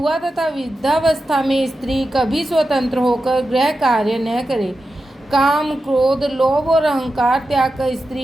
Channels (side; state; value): both; normal; correlation 0.91